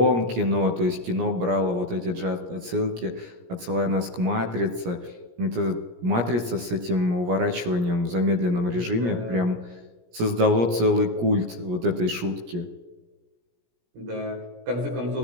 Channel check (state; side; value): late; left; 17 ms